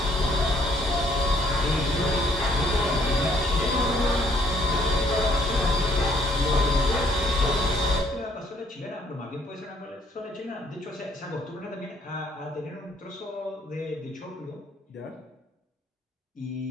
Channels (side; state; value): both; normal; correlation 0.65